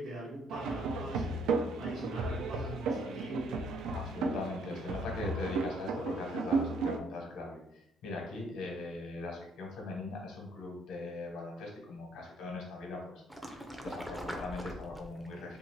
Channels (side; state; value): both; normal; correlation 0.66